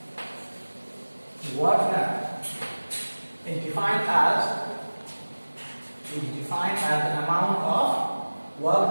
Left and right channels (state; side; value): inverted; both; correlation -1.00